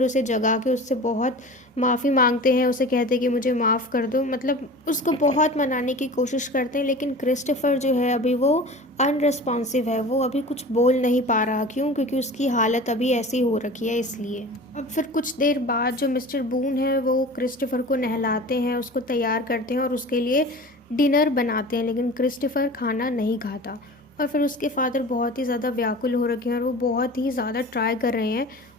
उसे जगा के उससे बहुत माफ़ी मांगते हैं, उसे कहते हैं कि मुझे माफ़ कर दो, मतलब उसको बहुत मनाने की कोशिश करते हैं। लेकिन क्रिस्टोफर जो है अभी वो अनरिस्पॉन्सिव है, वो अभी कुछ बोल नहीं पा रहा। क्यों? क्योंकि उसकी हालत अभी ऐसी हो रखी है, इसलिए। अब फिर कुछ देर बाद जो मिस्टर बून है वो क्रिस्टोफर को नहलाते हैं, उसको तैयार करते हैं और उसके लिए डिनर बनाते हैं, लेकिन क्रिस्टोफर खाना नहीं खाता। और फिर उसके फादर बहुत ही ज़्यादा व्याकुल हो रखे हैं और वो बहुत ही ज़्यादा ट्राई कर रहे हैं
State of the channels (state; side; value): normal; both; correlation 0.37